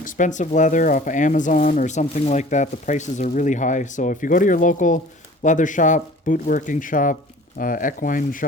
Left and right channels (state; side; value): normal; both; correlation 0.46